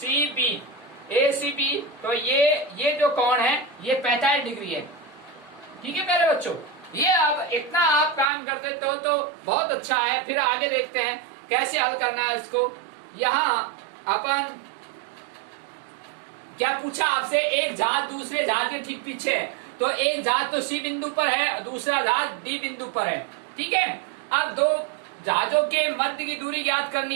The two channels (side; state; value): left; drops out; at 8.2 s